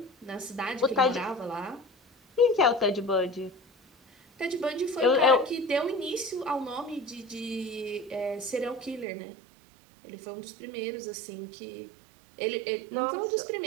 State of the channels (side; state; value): left; drops out; at 9.1 s